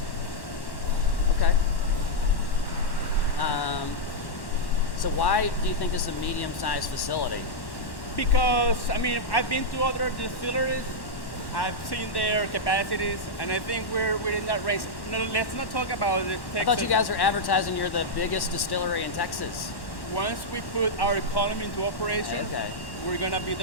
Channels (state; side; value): late; right; 1.1 ms